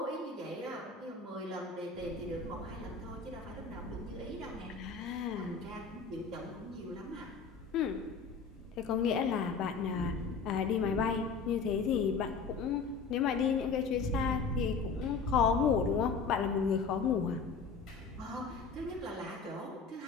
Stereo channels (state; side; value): quieter; right; 5.1 dB